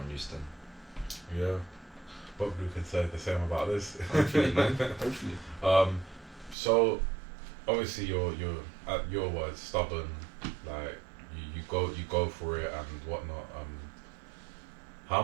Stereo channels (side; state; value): left; drops out; at 6.6 s